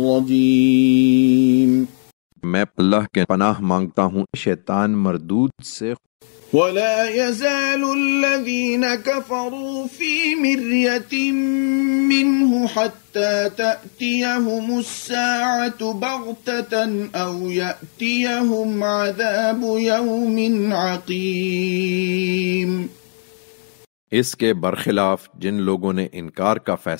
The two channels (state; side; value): silent; right; 64 dB below the other